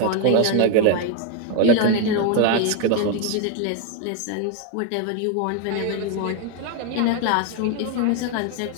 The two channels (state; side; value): different; both; correlation 0.01